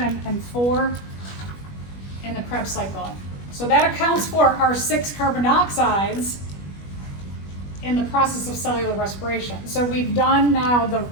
and 4 in the Krebs cycle. So that accounts for our 6 carbon dioxides in the process of cellular respiration. So we've done now the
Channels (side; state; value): right; late; 21 ms